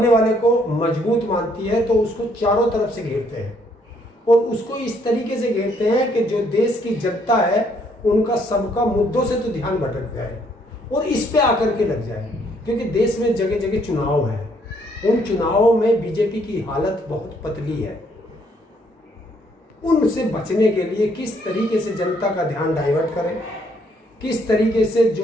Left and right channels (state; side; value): normal; both; correlation 0.68